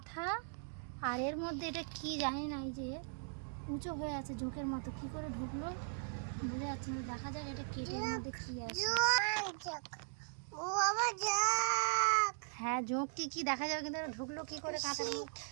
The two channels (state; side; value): silent; left; digital silence